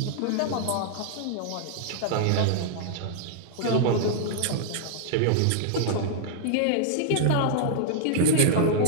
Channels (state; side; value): different; both; correlation -0.01